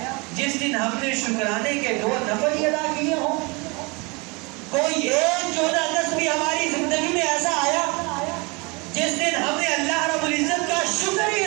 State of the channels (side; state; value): left; quieter; 28.2 dB